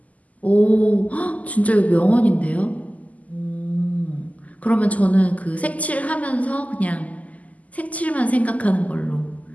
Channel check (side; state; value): right; late; 0.074 ms